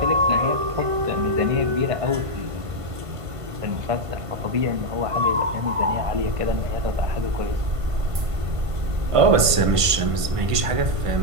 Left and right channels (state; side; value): late; left; 1.5 ms